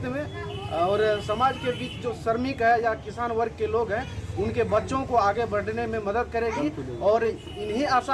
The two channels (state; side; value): identical; both; correlation 1.00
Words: में और समाज के बीच जो श्रमिक है या किसान वर्ग के लोग हैं उनके बच्चों को आगे बढ़ने में मदद करेगी। और इन्हीं